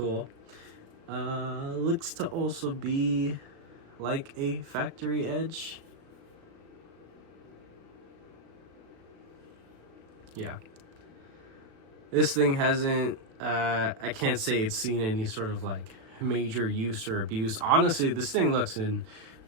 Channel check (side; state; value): left; late; 36 ms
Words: Looks to also be like a factory edge. Yeah. This thing hasn't, I can't say it's seen any sort of like major use or abuse. Honestly, this thing looks in